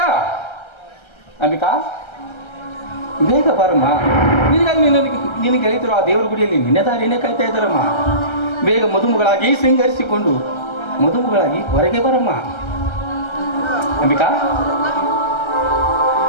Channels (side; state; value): right; late; 1.3 ms